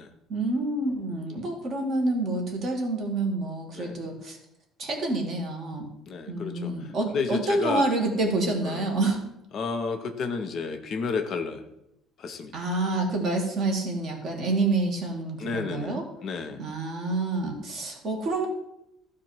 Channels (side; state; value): both; normal; correlation 0.44